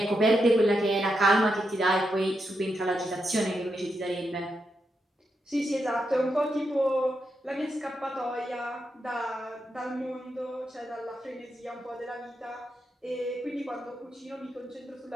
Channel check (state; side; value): normal; both; correlation 0.85